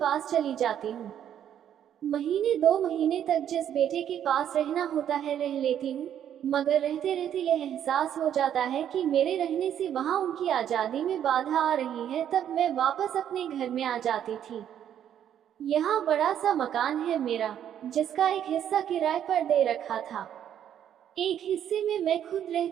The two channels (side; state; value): left; quieter; 9.9 dB